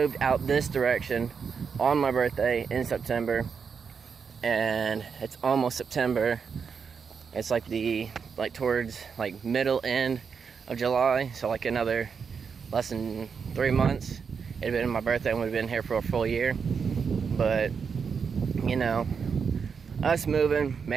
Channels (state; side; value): quieter; left; 6.1 dB